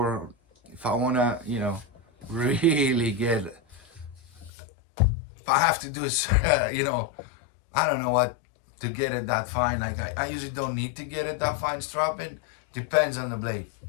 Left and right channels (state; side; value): drops out; right; at 4.5 s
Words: if I want to, you know, really get. If I have to do is, you know, I don't know what to get it that fine. Like I usually don't need to get it that fine strapping. Depends on the blade.